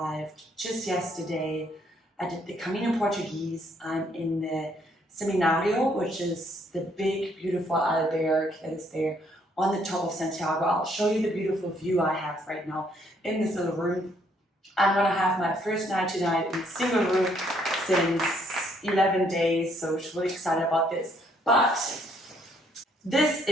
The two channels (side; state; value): both; normal; correlation 0.68